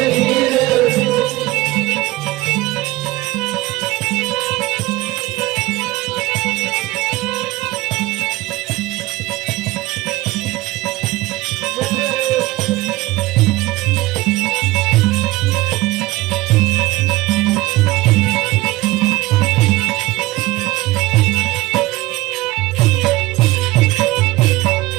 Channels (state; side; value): quieter; left; 19.6 dB